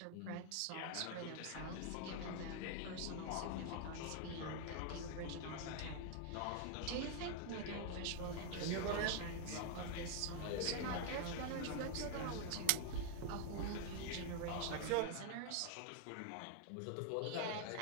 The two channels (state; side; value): different; both; correlation 0.00